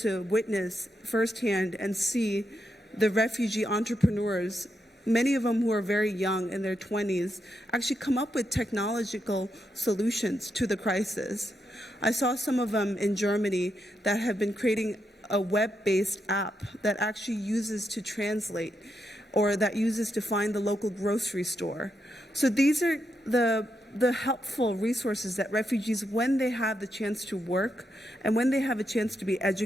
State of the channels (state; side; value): normal; both; correlation 0.83